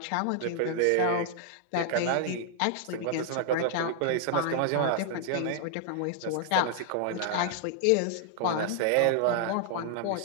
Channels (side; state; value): both; different; correlation 0.00